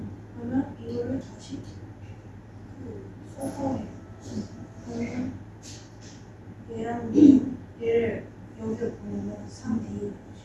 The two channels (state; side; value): identical; both; correlation 1.00